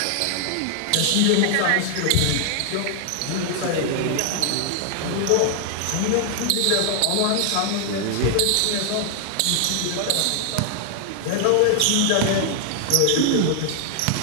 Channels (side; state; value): both; different; correlation 0.00